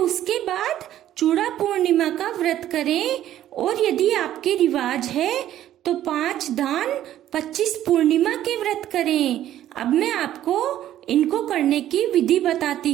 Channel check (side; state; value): left; quieter; 12.3 dB